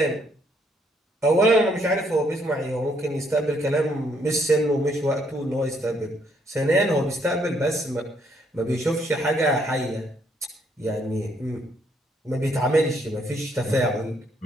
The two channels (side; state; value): both; normal; correlation 0.70